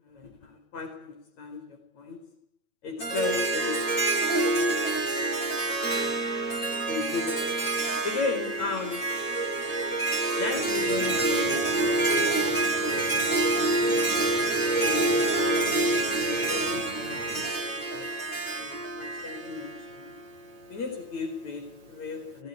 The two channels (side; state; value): right; late; 9.0 ms